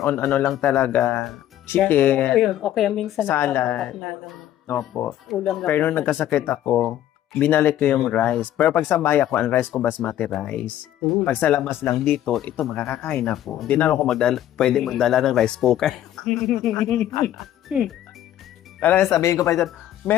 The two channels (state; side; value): quieter; right; 12.2 dB